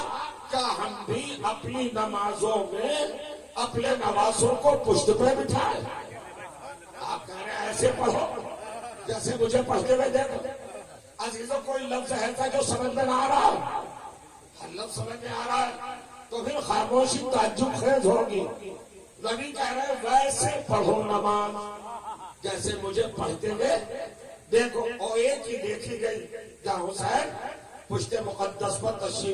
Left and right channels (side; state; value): both; identical; correlation 1.00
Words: کیا ہم بھی اپنی نمازوں میں اپنے نوازوں کو پشت پہ بٹھائے؟ آپ کہہ رہے ہیں ایسے پڑھو جیسے مجھے پڑھتے ہوئے دیکھو. عزیزوں کوئی لفظ ایسا جو سمجھ میں نہ آ رہا ہو, لفظ سمجھ میں آ رہا ہے تو پھر خاموشی تعجب خیز ہوگی. نبی کہہ رہے ویسے پڑھو نماز جیسے مجھے پڑھتے گئے. دیکھو اور ایک ہی دیکھی گئی جہاں حسین پشت مقدس پر